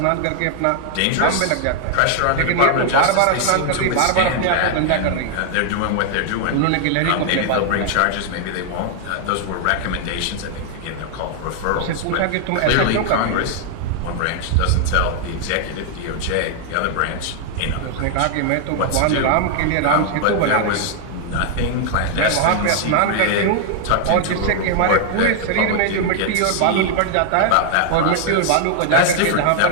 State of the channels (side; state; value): both; different; correlation 0.00